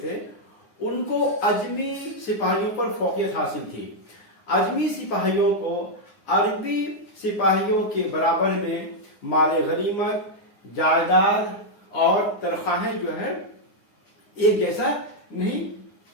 تھے ان کو اجمی سپاہیوں پر فوقیت حاصل تھی. اجمی سپاہیوں کو عربی سپاہیوں کے برابر میں مال غنیمت، جائیداد اور تنخواہیں جو ہے ایک جیسا نہیں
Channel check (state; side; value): late; right; 9.8 ms